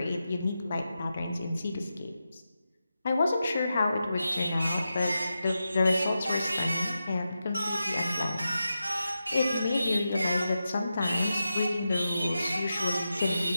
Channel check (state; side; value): inverted; both; correlation -0.90